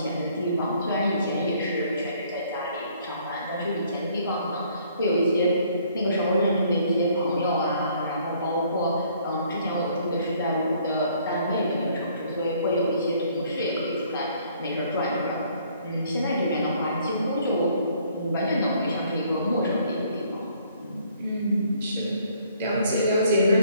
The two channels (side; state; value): both; inverted; correlation -0.62